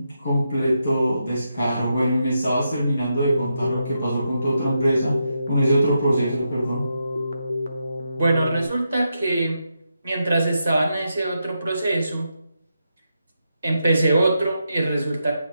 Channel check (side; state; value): both; inverted; correlation -0.84